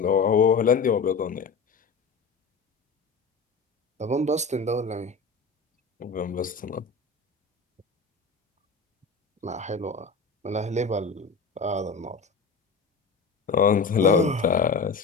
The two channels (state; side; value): quieter; right; 4.7 dB